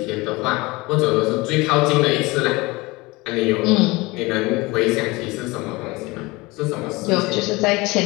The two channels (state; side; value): quieter; right; 23.0 dB